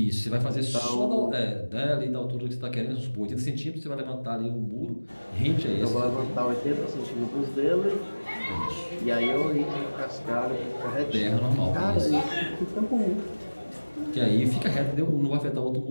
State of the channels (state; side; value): inverted; both; correlation -1.00